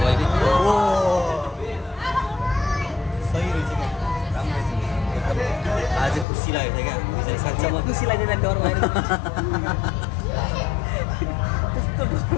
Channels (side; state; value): right; drops out; at 6.2 s